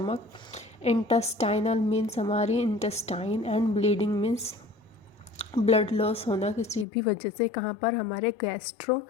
इंटेस्टाइनल मीन्स हमारी intestine, and bleeding means blood loss होना किसी भी वजह से, कहाँ पर, हमारे गैस्ट्रो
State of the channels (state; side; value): drops out; right; at 6.9 s